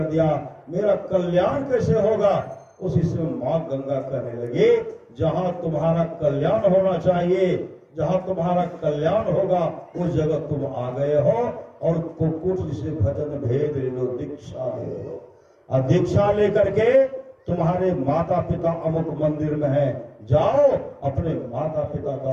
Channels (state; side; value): identical; both; correlation 1.00